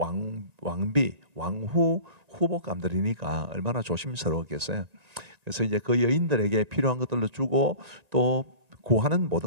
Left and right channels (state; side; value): late; left; 1.9 ms